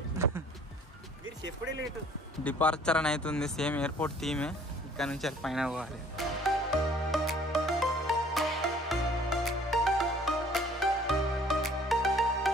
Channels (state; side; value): normal; both; correlation 0.56